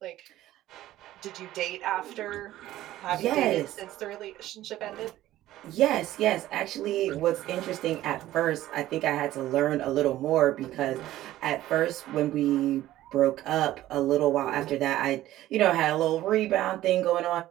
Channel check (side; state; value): left; quieter; 14.6 dB